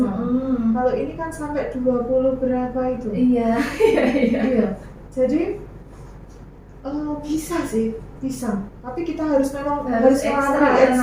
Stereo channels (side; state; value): both; identical; correlation 1.00